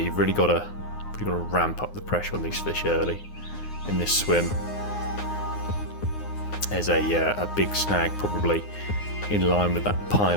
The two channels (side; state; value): right; late; 9.6 ms